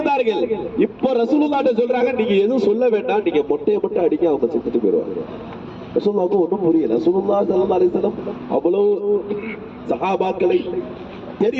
இப்போ ரசூலுல்லாஹ்ட்ட சொல்றாங்க, நீங்க எதுவும் சொல்ல வேண்டாம், நீங்க மொட்டையை மட்டும் அடிக்க, அவங்க செத்துட்டு போயிடுவாங்க. ரசூலுல்லாஹ்வுக்கு ஒன்றும் புரியல. ரசூலுல்லாஹ் ஸல்லல்லாஹு அலைஹி வஸல்லம் அவ்வளவு சஹாபாக்களை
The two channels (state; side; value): identical; both; correlation 1.00